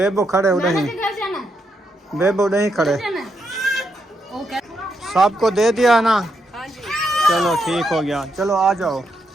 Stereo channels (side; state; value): both; normal; correlation 0.80